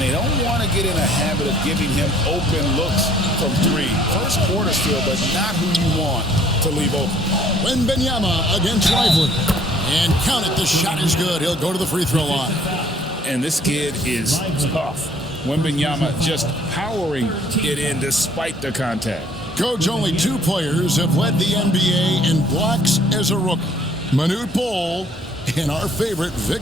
they don't want to get in a habit of giving him open looks from 3. First quarter still, but not who you want to leave open. Wembanyama against Lively. And count it, the shot is good. He'll go to the free throw line. And this kid is tough. Wembanyama just powering it in despite the contact. Coach, only 2 players have led the NBA in blocks as a rookie. Manute Bol and our favorite,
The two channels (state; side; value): normal; both; correlation 0.59